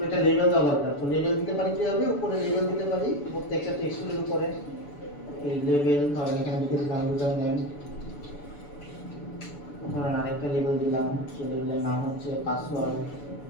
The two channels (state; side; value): late; right; 6.9 ms